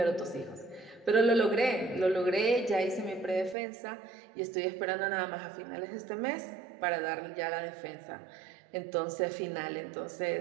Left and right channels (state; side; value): drops out; left; at 3.6 s